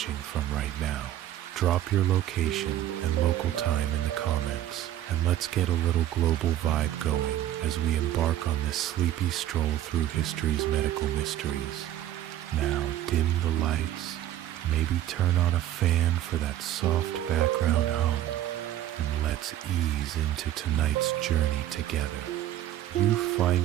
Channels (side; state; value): left; quieter; 12.8 dB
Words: from right now? Drop your location and local time in the comments, and let's get a little global vibe going as we embark on this sleepy stroll through history's medical mysteries. Now, dim the lights, maybe turn on a fan for that soft background hum, and let's ease into tonight's journey together. You